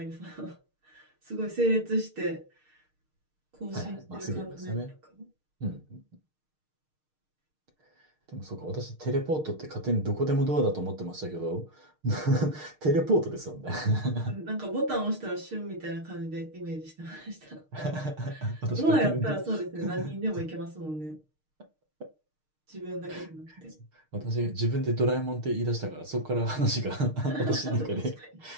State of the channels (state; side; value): late; left; 6.5 ms